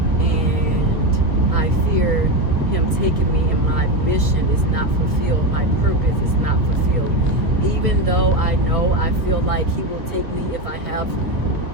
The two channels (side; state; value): left; late; 1.3 ms